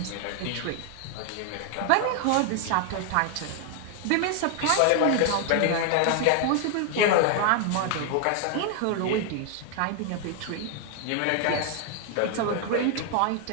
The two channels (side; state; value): both; different; correlation 0.00